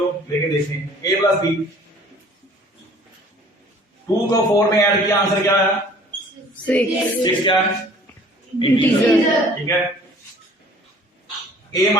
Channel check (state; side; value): normal; both; correlation 0.51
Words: लेके देखते हैं। a प्लस बी, 2 को 4 में ऐड किया, आंसर क्या है? 6 क्या है? इंटीजर। ठीक है। a